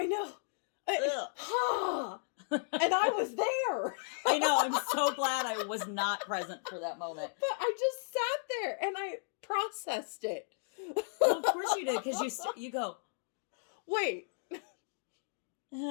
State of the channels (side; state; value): right; silent; digital silence